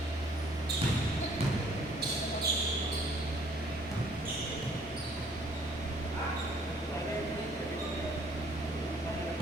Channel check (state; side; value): normal; both; correlation 0.60